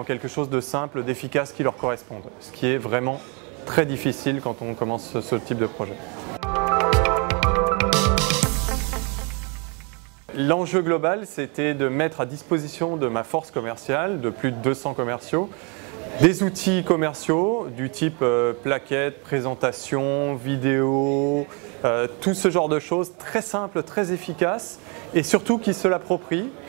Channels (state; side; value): quieter; left; 33.7 dB